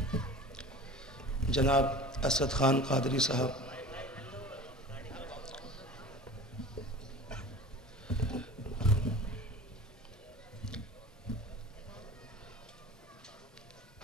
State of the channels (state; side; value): normal; both; correlation 0.38